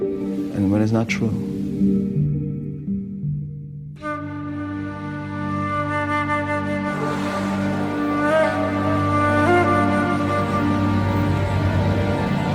And when it's not true.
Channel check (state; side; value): identical; both; correlation 1.00